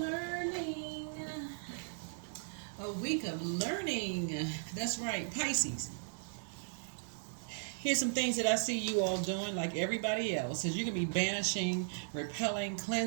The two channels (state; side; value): silent; left; digital silence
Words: A week of learning. That's right, Pisces. Here's some things that I see you all doing like everybody else. Is you're going to be banishing, repelling,